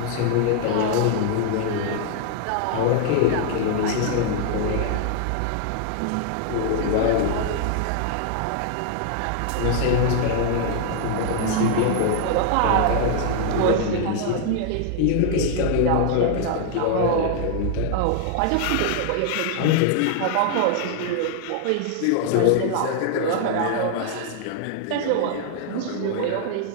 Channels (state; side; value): different; both; correlation 0.00